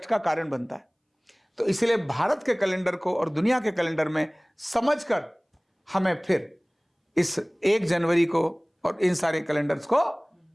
का कारण बनता है। तो इसलिए भारत के कैलेंडर को और दुनिया के कैलेंडर में समझकर हमें फिर इस 1 जनवरी को और इन सारे कैलेंडर्स को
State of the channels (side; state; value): both; identical; correlation 1.00